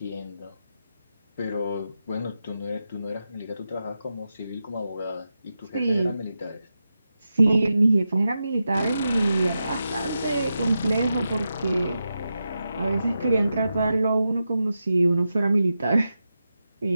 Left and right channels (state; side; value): inverted; both; correlation -0.89